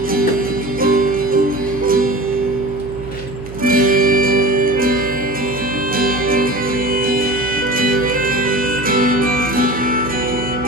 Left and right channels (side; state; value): right; noise; hum, 14 dB below the sound